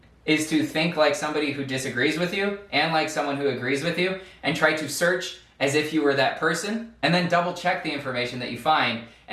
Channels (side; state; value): both; identical; correlation 1.00